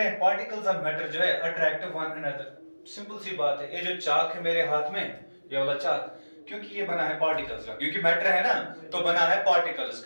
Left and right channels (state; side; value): inverted; both; correlation -1.00